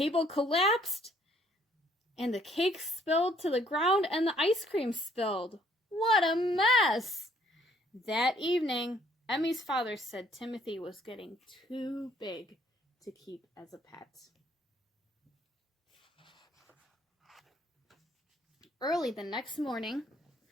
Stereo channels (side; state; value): both; normal; correlation 0.64